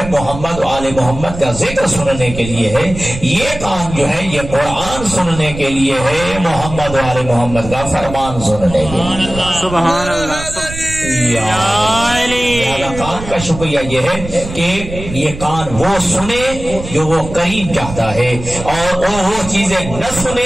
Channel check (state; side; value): noise; right; rumble, 10 dB below the sound